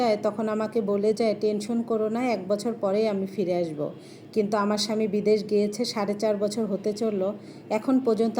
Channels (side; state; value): both; identical; correlation 1.00